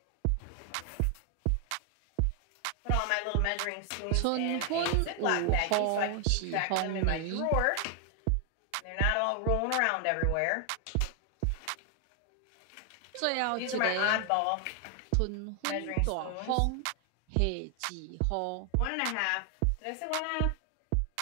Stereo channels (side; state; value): both; different; correlation 0.00